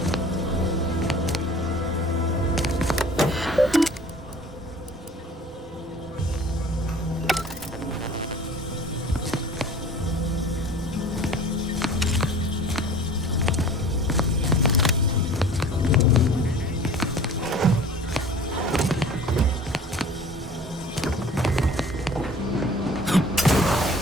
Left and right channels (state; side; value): normal; both; correlation 0.46